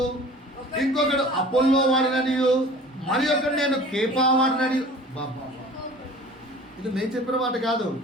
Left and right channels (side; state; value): both; normal; correlation 0.44